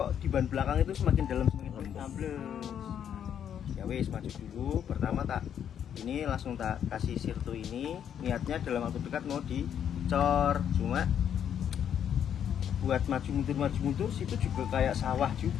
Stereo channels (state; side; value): quieter; right; 9.0 dB